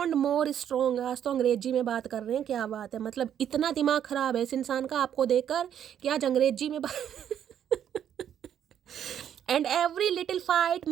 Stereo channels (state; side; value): quieter; left; 9.6 dB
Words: more strong. आज तो अंग्रेजी में बात कर रहे हैं, क्या बात है। मतलब इतना दिमाग खराब है इस इंसान का आपको देखकर कि आज अंग्रेजी में and every little fight